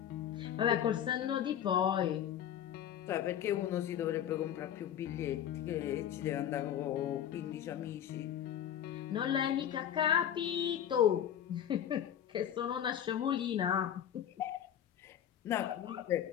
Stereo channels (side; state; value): right; quieter; 10.0 dB